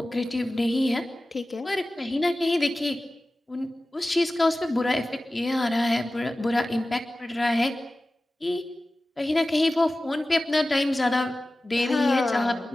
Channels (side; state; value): both; normal; correlation 0.96